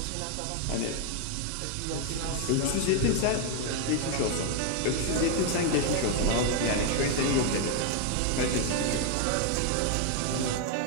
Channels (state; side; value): different; both; correlation 0.00